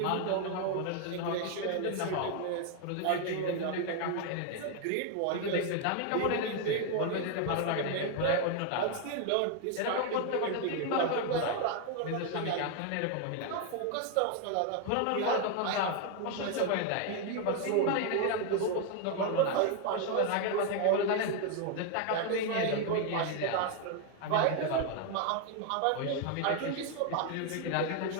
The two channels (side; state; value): both; different; correlation 0.01